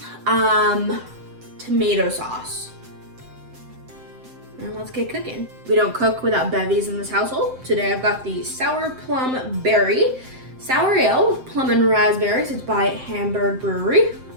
tomato sauce. And let's get cooking. We don't cook without bevies in this household. Today I've got the Sour Plum Berry Sour Ale with plum and raspberries. It's by Hamburg Brewery.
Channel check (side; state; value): left; late; 7.7 ms